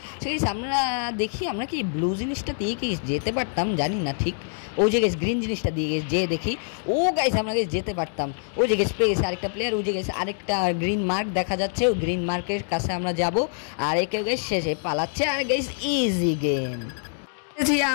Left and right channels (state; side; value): silent; right; digital silence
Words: সে গাইস আমরা দেখি আমরা কি ব্লু জিনিসটা দিয়ে কি যেতে পারতাম জানি না ঠিক। ওই যে গাইস গ্রিন জিনিসটা দিয়ে গেছে যে দেখি, ও গাইস আমরা গাইস যেতে পারতাম। ওই যে গাইস পেয়ে গেছে আরেকটা প্লেয়ার। ওই যে গাইস আরেকটা গ্রিন মার্ক দেখা যাচ্ছে, ওই গ্রিন মার্কের কাছে আমরা যাব। আর একেও গাইস শেষে পালাচ্ছে। আর গাইস ইজি গেম